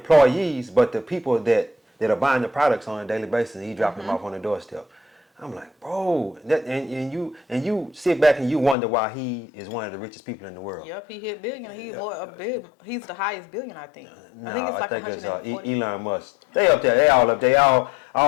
but the people that are buying the products on a daily basis, and he dropping them off on the doorstep. I'm like, bro, and you sit back and you wonder why he is one of the richest people in the world. Yep, he hit billion. He's the highest billion, I think. No, I think it's like 140. Elon Musk. They up there. They all up there.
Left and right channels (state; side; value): drops out; right; at 8.8 s